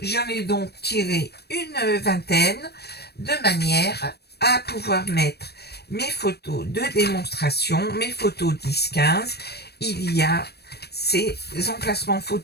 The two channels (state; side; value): late; right; 0.47 ms